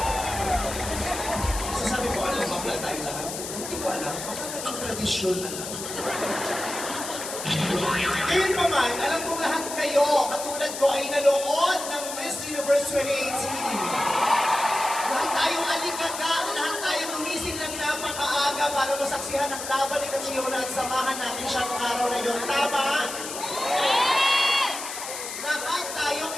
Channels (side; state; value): left; noise; hiss, 7 dB below the sound